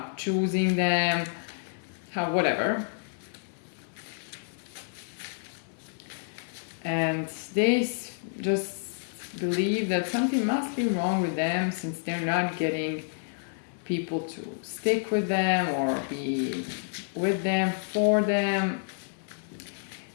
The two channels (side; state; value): right; silent; 58 dB below the other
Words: choosing them, whatever. And they just believe that something must be wrong with them, since they're not getting people to stick with them or be with them, for them.